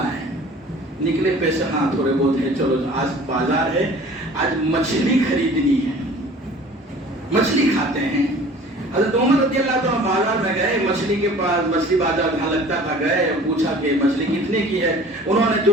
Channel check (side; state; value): both; normal; correlation 0.46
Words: ہے. نکلے پیسے ہاں تھوڑے بہت ہے, چلو آج بازار ہے, آج مچھلی خریدنی ہے, مچھلی کھاتے ہیں. حضرت عمر رضی اللہ تعالیٰ بازار میں گئے, مچھلی کے پاس, مچھلی بازار جہاں لگتا تھا گئے, پوچھا کہ مچھلی کتنے کی ہے. انہوں نے